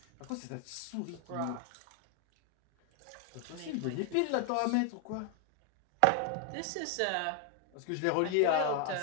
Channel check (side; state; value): both; different; correlation 0.01